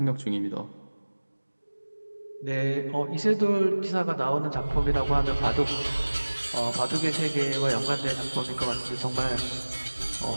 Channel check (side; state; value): both; inverted; correlation -1.00